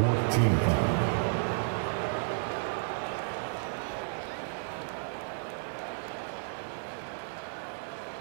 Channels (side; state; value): left; silent; 56 dB below the other